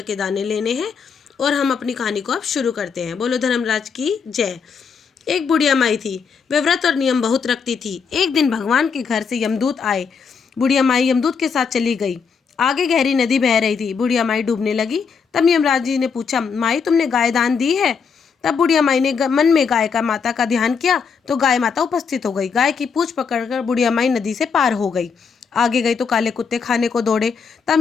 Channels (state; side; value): quieter; right; 5.9 dB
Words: के दाने लेने हैं और हम अपनी कहानी को अब शुरू करते हैं। बोलो धर्मराज की जय। एक बुढ़िया माई थी, वह व्रत और नियम बहुत रखती थी। एक दिन भगवान के घर से यमदूत आए। बुढ़िया माई यमदूत के साथ चली गई। आगे गहरी नदी बह रही थी। बुढ़िया माई डूबने लगी। तब यमराज जी ने पूछा, माई तुमने गाय दान दी है? तब बुढ़िया माई ने मन में गाय का माता का ध्यान किया तो गाय माता उपस्थित हो गई। गाय की पूंछ पकड़कर बुढ़िया माई नदी से पार हो गई। आगे गई तो काले कुत्ते खाने को दौड़े।